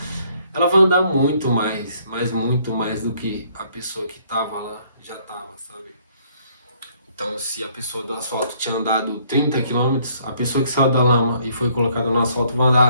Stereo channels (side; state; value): both; inverted; correlation -0.65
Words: ela vai andar muito mais, mas muito mais do que a pessoa que tava lá já tava, sabe? Então, se a pessoa do asfalto tinha andado 30 quilômetros, a pessoa que saiu da lama e foi colocada no asfalto vai